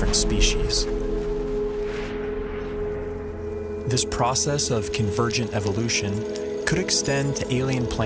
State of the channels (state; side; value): identical; both; correlation 1.00